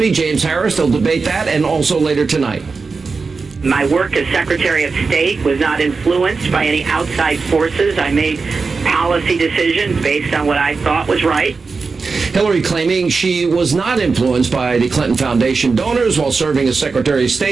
James Harris. They'll debate that, and also later tonight. My work as Secretary of State was not influenced by any outside forces. I made policy decisions based on what I thought was right. Hillary claiming she was not influenced by the Clinton Foundation donors while serving as Secretary of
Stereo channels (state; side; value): quieter; left; 4.5 dB